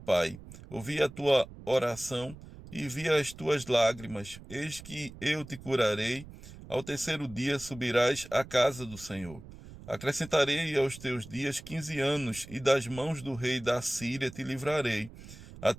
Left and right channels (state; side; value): noise; right; rumble, 17 dB below the sound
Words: pai: ouvi a tua oração e vi as tuas lágrimas. Eis que eu te curarei. Ao terceiro dia subirás à casa do Senhor. Acrescentarei aos teus dias 15 anos, e das mãos do rei da Síria te livrarei, a